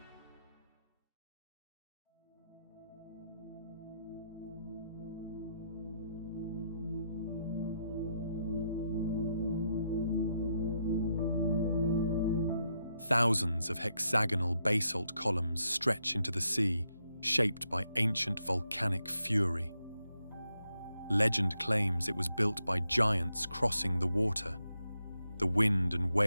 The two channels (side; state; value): both; inverted; correlation -0.80